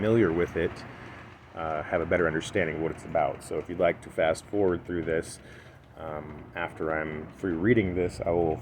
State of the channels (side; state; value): both; identical; correlation 1.00